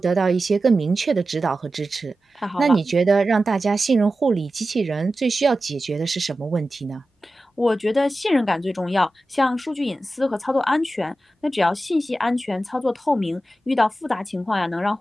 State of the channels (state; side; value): normal; both; correlation 0.93